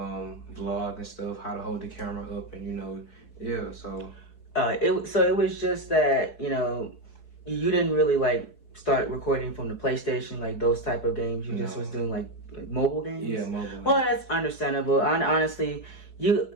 and stuff, how to hold the camera up, and you know, yeah. So it was just that, you know, you didn't really like start recording from the PlayStation, like those type of games. You just was doing like mobile games. Yeah, mobile. Well, that's understandable. Honestly,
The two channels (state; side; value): late; right; 4.7 ms